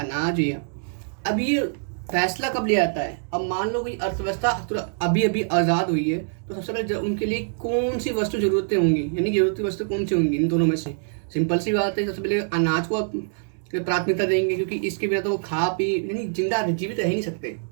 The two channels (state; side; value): silent; left; 62 dB below the other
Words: अनाज है। अब ये फैसला कब लिया जाता है, अब मान लो कोई अर्थव्यवस्था अभी अभी आज़ाद हुई है, तो सबसे पहले उनके लिए कौन सी वस्तु जरूरतें होंगी, यानी जरूरती वस्तु कौन सी होंगी इन दोनों में से। सिंपल सी बात है, सबसे पहले अनाज को प्राथमिकता देंगे, क्योंकि इसके बिना तो वो खा पी यानी जिंदा जीवित रह ही नहीं सकते।